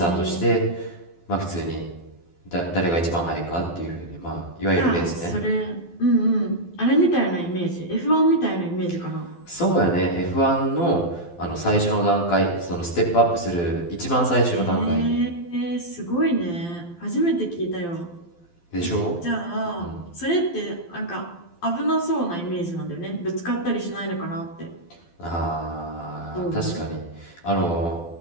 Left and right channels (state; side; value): late; right; 12 ms